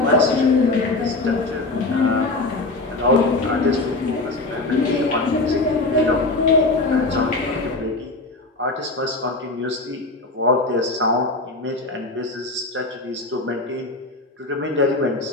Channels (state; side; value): quieter; right; 3.1 dB